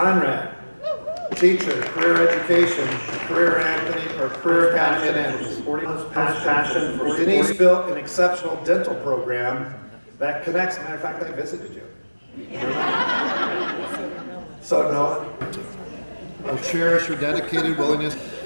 teacher, career education, career Anthony, or career academy at Andrews. Passion for Denise built an exceptional dental program that connects. Matter of fact, I visited you. So no, I'll cherish her dedicated willingness.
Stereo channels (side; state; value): both; inverted; correlation -1.00